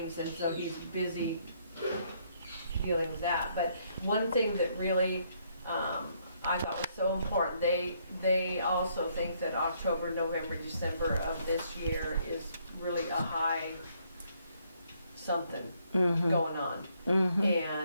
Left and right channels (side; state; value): both; inverted; correlation -0.70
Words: and so he's busy dealing with that. But one thing that really I thought was so important, they also think that October, November, December of this year is really a high something going on.